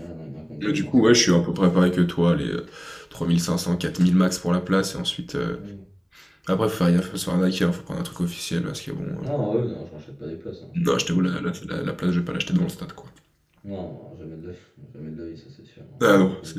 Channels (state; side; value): identical; both; correlation 1.00